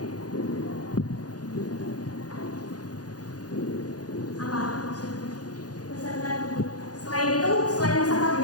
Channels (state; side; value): late; right; 0.68 ms